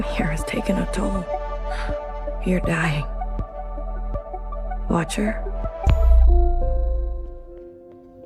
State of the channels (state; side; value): identical; both; correlation 1.00